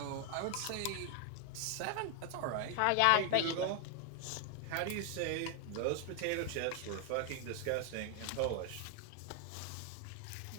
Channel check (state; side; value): different; both; correlation 0.00